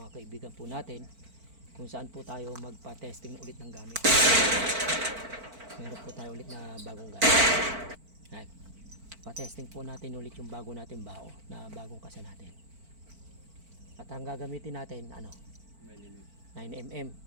kaibigan po natin kung saan po tayo magpa-testing ulit ng gamit. Meron po tayo ulit na bagong gamit. Yan. Pa-testing po natin ulit yung bago natin bao na bagong kasa natin. At ang gagamitin natin, 9mm.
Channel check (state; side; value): late; left; 4.5 ms